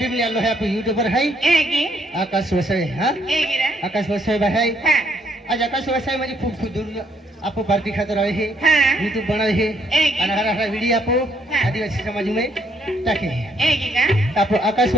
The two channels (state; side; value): normal; both; correlation 0.70